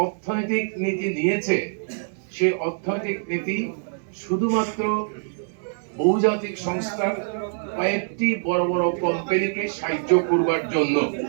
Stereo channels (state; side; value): silent; left; digital silence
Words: অর্থনৈতিক নীতি নিয়েছে, সেই অর্থনৈতিক নীতি শুধুমাত্র বহুজাতিক সংস্থার কয়েকটি বড় বড় কোম্পানিকে সাহায্য করবার জন্য।